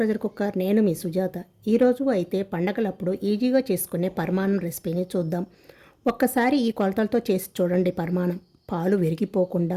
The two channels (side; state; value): both; identical; correlation 1.00